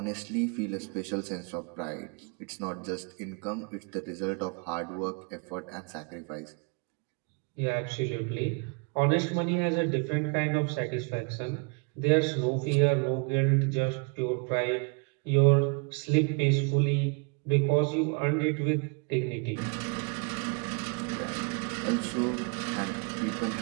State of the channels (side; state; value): left; quieter; 34.0 dB